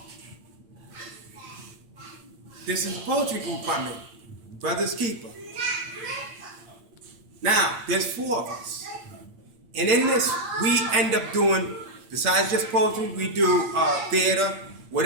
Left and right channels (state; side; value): late; left; 8.7 ms